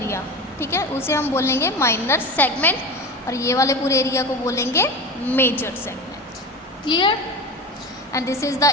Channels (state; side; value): normal; both; correlation 0.29